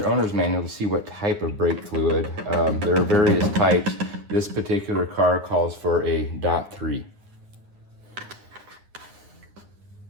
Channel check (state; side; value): late; left; 9.7 ms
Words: owner's manual to see what type of brake fluid. There are various types. This particular car calls for a .3.